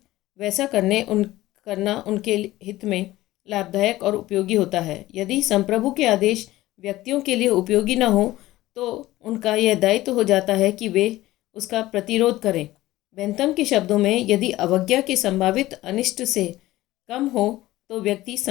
वैसा करना उनके हित में लाभदायक और उपयोगी होता है। यदि संप्रभु के आदेश व्यक्तियों के लिए उपयोगी न हो तो उनका यह दायित्व हो जाता है कि वे उसका प्रतिरोध करें। बेंथम के शब्दों में यदि अवज्ञा के संभावित अनिष्ट से कम हो तो व्यक्ति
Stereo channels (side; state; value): right; quieter; 16.7 dB